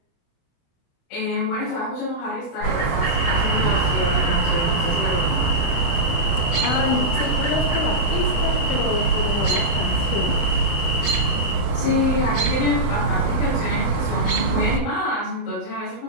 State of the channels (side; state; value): right; late; 35 ms